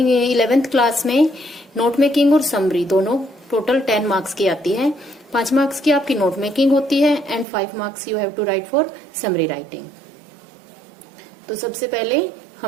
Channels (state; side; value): drops out; left; at 7.5 s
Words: 11th class में note making और समरी दोनों टोटल 10 मार्क्स की आती है। 5 मार्क्स की आपकी नोट मेकिंग होती है and 5 marks you have to write for summary writing. तो सबसे पहले